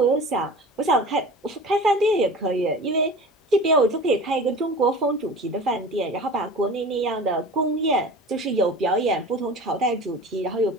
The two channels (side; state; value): both; normal; correlation 0.37